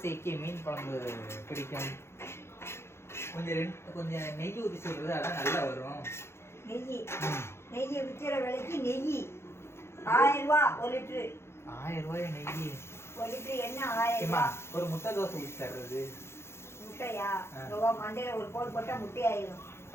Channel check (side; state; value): right; late; 0.12 ms